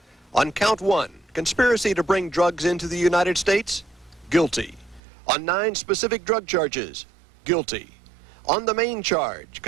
On count 1, conspiracy to bring drugs into the United States, guilty. On 9 specific drug charges, guilty. On the main charge,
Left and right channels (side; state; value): left; drops out; at 5.0 s